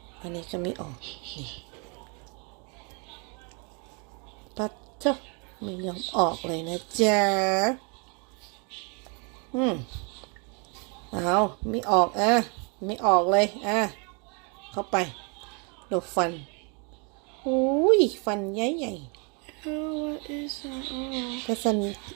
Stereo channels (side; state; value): left; quieter; 34.8 dB